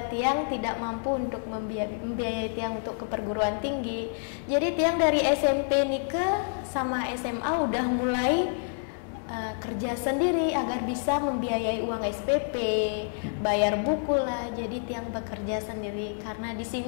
Tiang tidak mampu untuk membiayai Tiang untuk ke perguruan tinggi. Jadi Tiang dari SMP Nike sama SMA udah mulai kerja sendiri agar bisa membiayai uang SPP, bayar buku lah. Jadi Tiang bekerja sendiri karena di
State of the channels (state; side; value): silent; right; digital silence